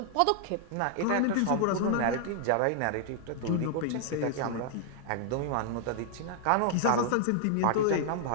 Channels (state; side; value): different; both; correlation 0.00